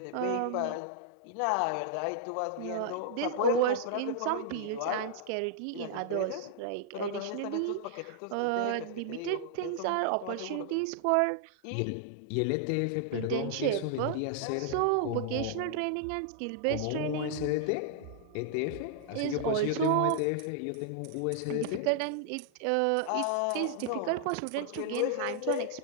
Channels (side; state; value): both; different; correlation -0.01